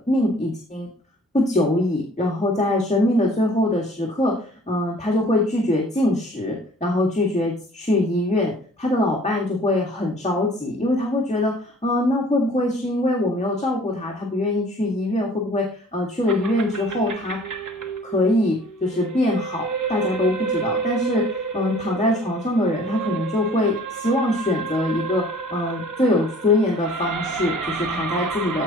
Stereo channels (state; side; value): normal; both; correlation 0.51